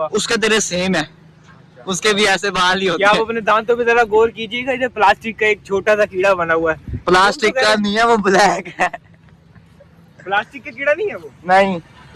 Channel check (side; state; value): both; identical; correlation 1.00